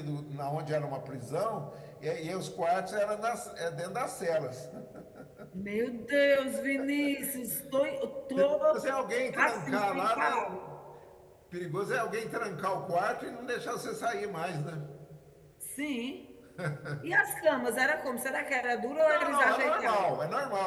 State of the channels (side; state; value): both; identical; correlation 1.00